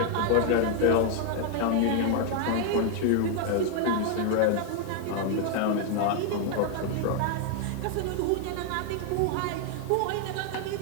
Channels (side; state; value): both; different; correlation 0.00